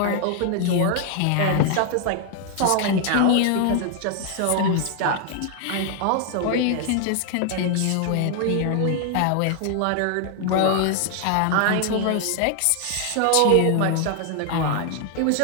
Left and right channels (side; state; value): both; different; correlation 0.00